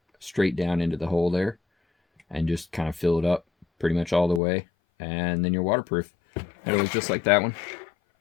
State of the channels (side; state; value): right; drops out; at 4.4 s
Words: straight down into the hole there and just kind of fill it up pretty much all the way, and then you're waterproof. And it was just like that one.